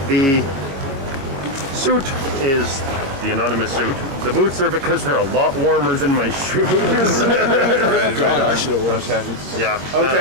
The suit is the anonymous suit. The boots are because they're a lot warmer than my shoes. right. Okay. Yeah.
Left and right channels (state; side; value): late; left; 22 ms